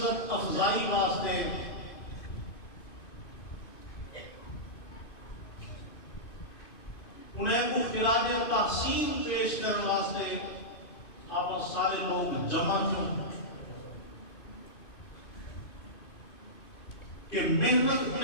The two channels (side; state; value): right; late; 2.5 ms